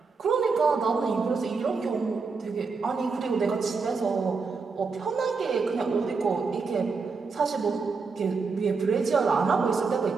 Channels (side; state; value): left; quieter; 4.7 dB